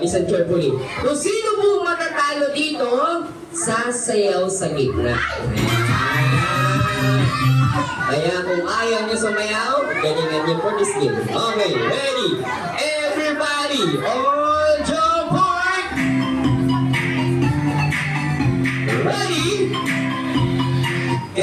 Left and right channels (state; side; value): identical; both; correlation 1.00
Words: carefully. Kung sino po matatalo dito, sasayaw sa gitna. Kaya kung ayaw niyo sumayaw, ganyan-ganyan for this game. Okay, ready? Everybody, on your mark. Ready?